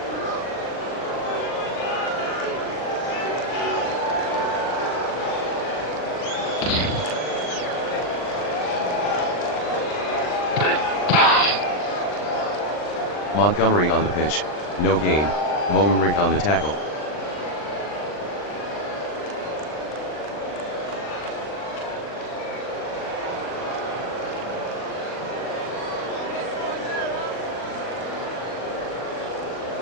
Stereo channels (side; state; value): right; late; 39 ms